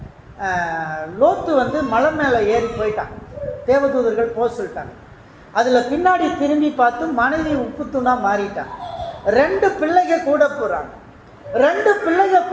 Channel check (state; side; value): identical; both; correlation 1.00